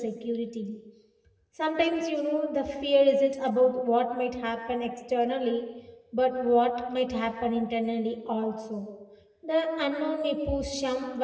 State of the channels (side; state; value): both; identical; correlation 1.00